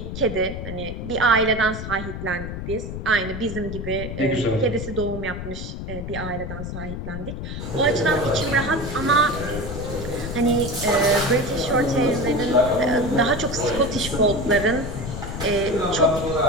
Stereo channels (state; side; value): noise; left; rumble, 7 dB below the sound